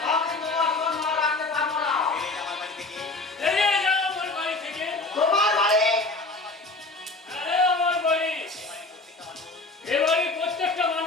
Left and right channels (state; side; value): quieter; right; 3.3 dB